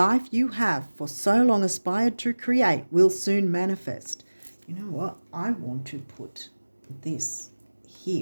you have for so long aspired to create will soon manifest. You know what? I want to put this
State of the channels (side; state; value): both; inverted; correlation -1.00